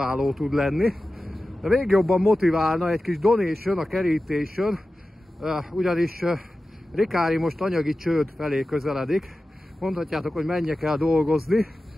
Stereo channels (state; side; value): normal; both; correlation 0.94